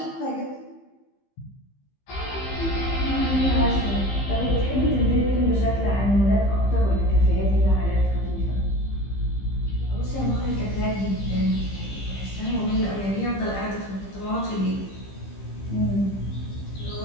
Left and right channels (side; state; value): right; late; 15 ms